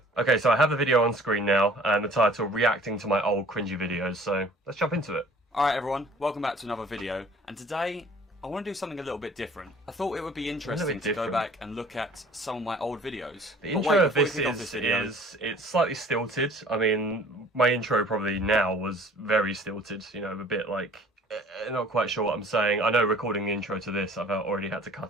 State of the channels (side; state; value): both; normal; correlation 0.51